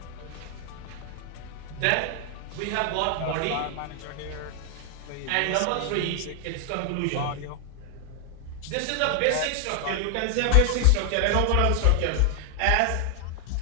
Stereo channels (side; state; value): both; different; correlation 0.00